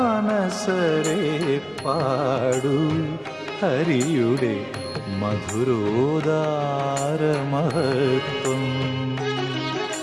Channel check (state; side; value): identical; both; correlation 1.00